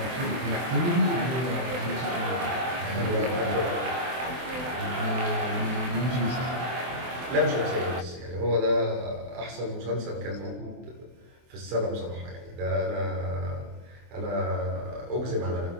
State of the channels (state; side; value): late; left; 24 ms